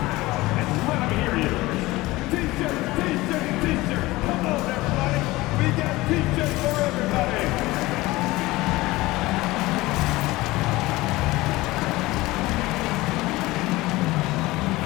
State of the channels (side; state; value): right; quieter; 19.7 dB